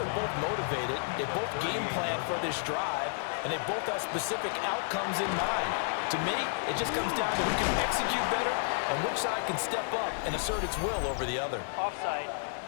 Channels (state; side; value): silent; right; 57 dB below the other